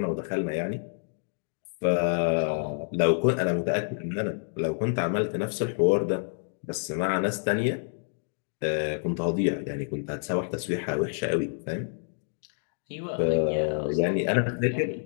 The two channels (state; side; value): silent; right; digital silence